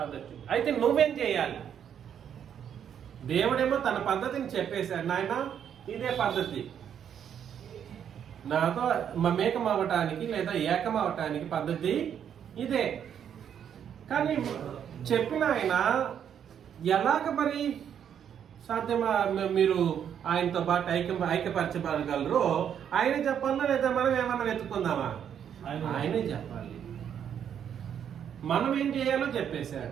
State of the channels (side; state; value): left; quieter; 8.8 dB